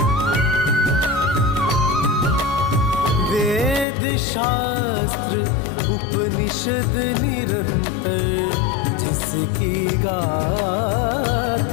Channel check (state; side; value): drops out; right; at 3.9 s